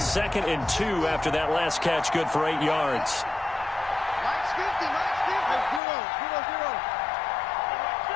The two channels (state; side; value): drops out; right; at 5.8 s